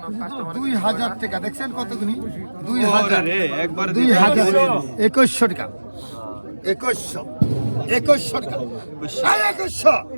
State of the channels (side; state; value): both; inverted; correlation -1.00